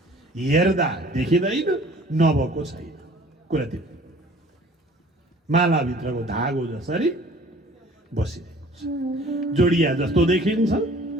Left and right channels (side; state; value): both; normal; correlation 0.51